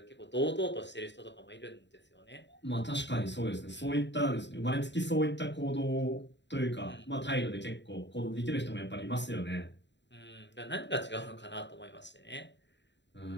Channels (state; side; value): late; right; 0.52 ms